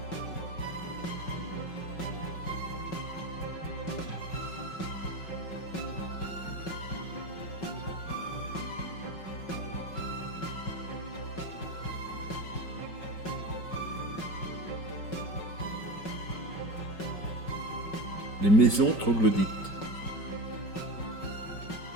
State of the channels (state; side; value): late; right; 5.4 ms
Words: Les maisons troglodytes.